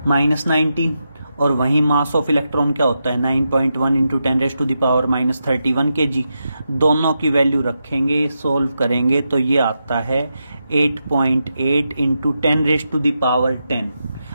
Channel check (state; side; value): inverted; both; correlation -0.86